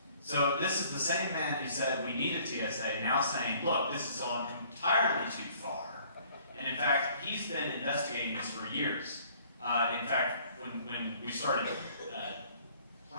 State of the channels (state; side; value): inverted; both; correlation -0.57